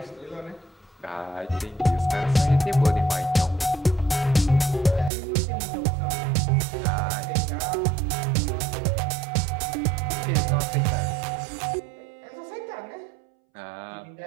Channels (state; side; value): drops out; left; at 5.1 s